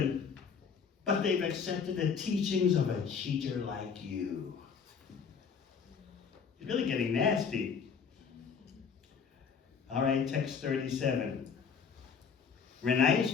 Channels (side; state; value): right; quieter; 6.3 dB